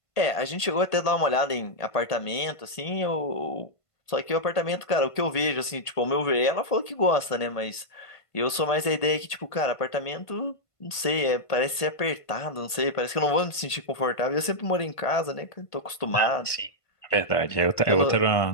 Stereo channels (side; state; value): right; late; 1.5 ms